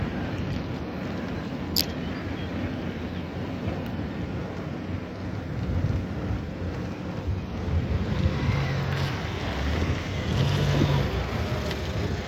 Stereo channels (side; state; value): both; identical; correlation 1.00